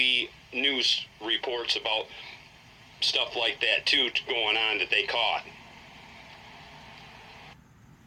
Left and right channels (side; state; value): both; identical; correlation 1.00